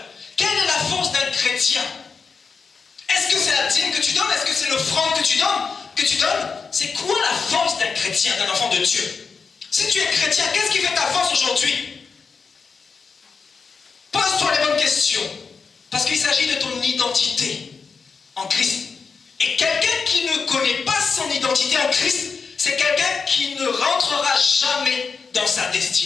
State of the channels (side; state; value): right; quieter; 5.2 dB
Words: Quelle est la force d'un chrétien? Est-ce que c'est la dîme que tu donnes? Est-ce que c'est l'offrande que tu donnes? C'est quoi la force d'un chrétien, d'un enfant de Dieu? Si tu es chrétien, qu'est-ce qui fait ta force aujourd'hui? Pose-toi les bonnes questions. Parce qu'il s'agit de ton identité en Christ. Et quelqu'un qui ne connaît pas son identité en Christ, c'est quelqu'un qui ne rentrera jamais dans sa